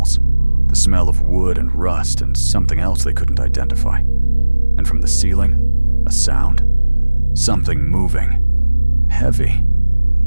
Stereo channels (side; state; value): both; inverted; correlation -1.00